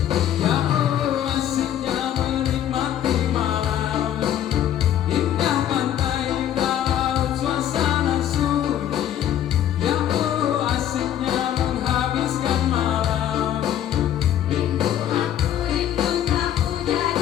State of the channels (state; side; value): quieter; right; 10.9 dB